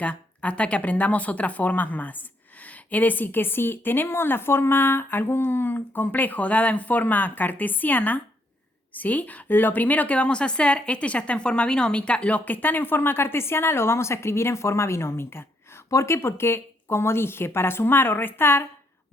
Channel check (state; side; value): normal; both; correlation 0.73